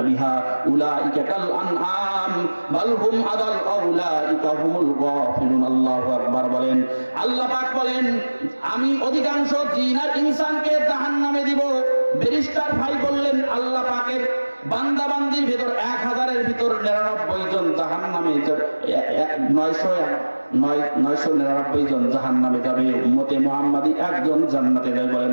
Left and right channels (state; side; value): inverted; both; correlation -1.00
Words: বিহা উলাইকা কাল আনআম বাল হুম আদাল উলাইকা হুমুল গাফিলুন। আল্লাহু আকবার বলেন। আল্লাহ পাক বলেন আমি অধিকাংশ জিন আর ইনসানকে জাহান্নামে দিব। ব্যারিস্টার ভাই বললেন আল্লাহ পাকের বান্দা বান্দির ভিতর 1000-এর ভিতর 99 জন জাহান্নামে, 999 জন জাহান্নামে যাবে। উম্মতে মুহাম্মাদি একজন জান্নাতে যাবে। বলেন